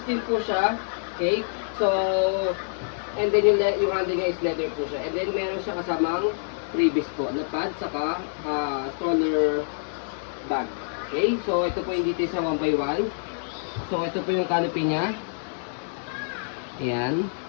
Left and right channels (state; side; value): silent; right; 61 dB below the other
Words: din po siya. Okay, so and then yung handle niya is leather po siya. And then meron siya kasamang freebies po, na pad, saka stroller bag. Okay, so ito po yung details sa 1x1. So ito po yung canopy niya. Ayan.